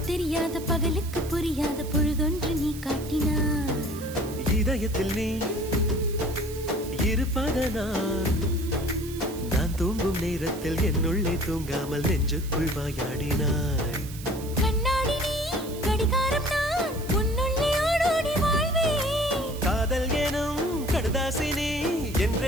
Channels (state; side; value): noise; right; hiss, 15 dB below the sound